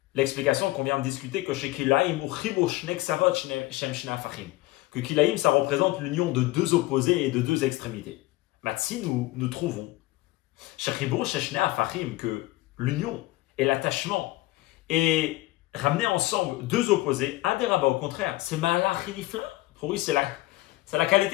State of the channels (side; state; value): right; quieter; 19.0 dB